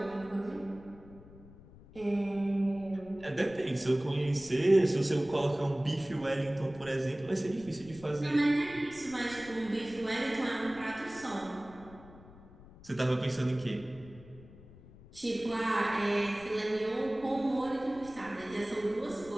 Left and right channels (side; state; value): left; noise; rumble, 20 dB below the sound